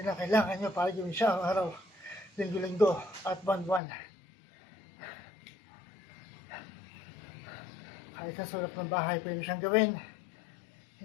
ang kailangan nyo para gawin siya araw-araw, linggo-linggo, at buwan-buwan. Kahit sa sulap ng bahay, pwede siyang gawin.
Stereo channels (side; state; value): right; drops out; at 3.8 s